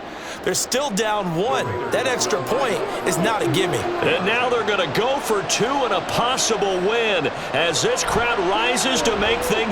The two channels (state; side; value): identical; both; correlation 1.00